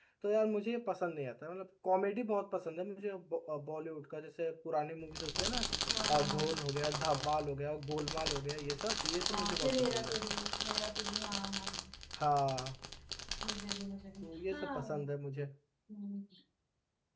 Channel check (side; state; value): both; identical; correlation 1.00